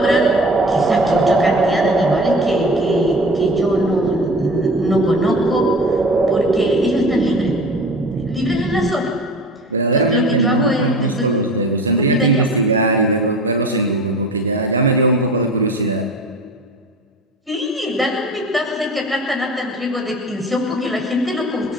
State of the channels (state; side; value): normal; both; correlation 0.38